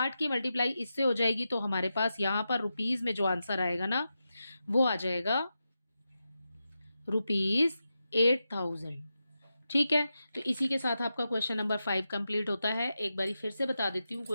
की मल्टीप्लाई इससे हो जाएगी तो हमारे पास यहाँ पर रुपीज में जो आंसर आएगा ना वो आ जाएगा रुपीज 8000, ठीक है। तो इसी के साथ आपका क्वेश्चन नंबर 5 कंप्लीट होता है। एक बारी फिर से बता देती हूँ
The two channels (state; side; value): inverted; both; correlation -0.89